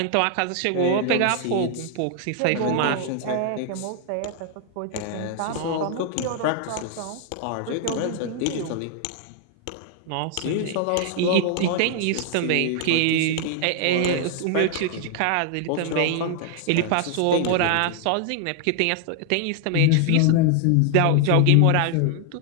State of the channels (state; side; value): different; both; correlation 0.00